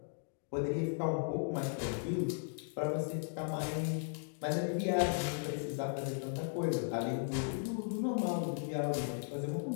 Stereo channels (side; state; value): right; silent; digital silence